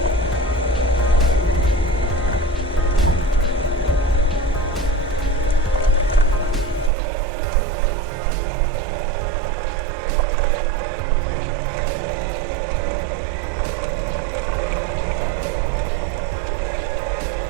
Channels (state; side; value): drops out; left; at 6.9 s